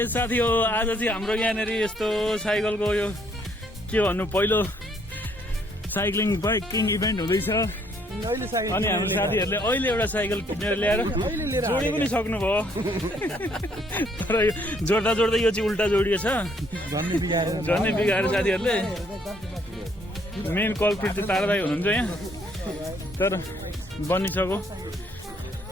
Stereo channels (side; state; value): both; normal; correlation 0.67